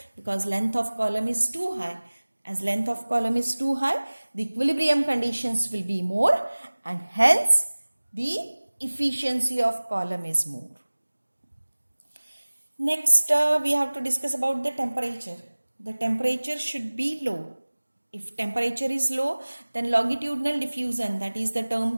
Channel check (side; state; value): both; inverted; correlation -1.00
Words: Because length of column is too high. As length of column is too high, the equilibrium conditions will be more, and hence the efficiency of column is more. Next we have to discuss about the temperature. The temperature should be low. If temperature is low, then longitudinal diffusion, that is the